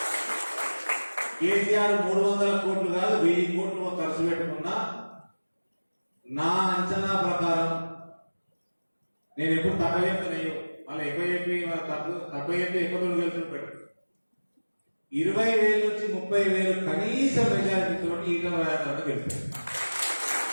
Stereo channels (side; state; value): both; inverted; correlation -1.00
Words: కేసీఆర్ 300 కోట్లు కాదు 1000 కోట్లు ఖర్చు పెట్టుకున్నా నా అంచనా ప్రకారం, నేను ఎప్పుడు తక్కువ చెప్తానయ్యో మళ్ళీ ఎక్కువ చెప్పి తక్కువ చెప్పి ఎక్కువ రోజులు గెలుచుకుంటాడు. 20,000 నుంచి 30,000 కనీస మెజారిటీతో ఈటెల రాజేందర్ గెలుస్తాడు.